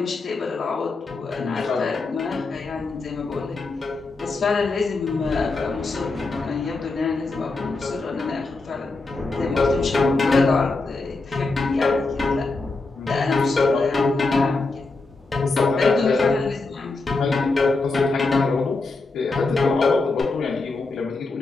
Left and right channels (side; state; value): right; quieter; 3.6 dB